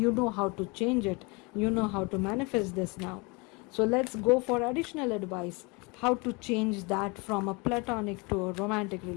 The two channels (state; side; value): quieter; right; 28.4 dB